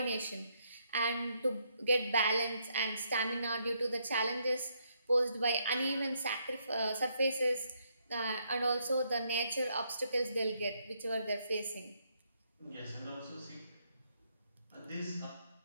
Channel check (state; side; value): inverted; both; correlation -0.74